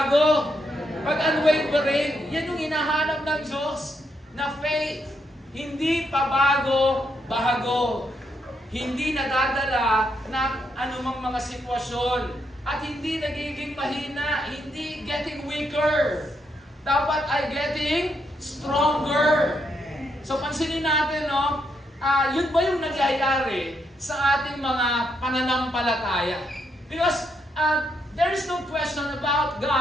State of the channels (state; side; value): normal; both; correlation 0.78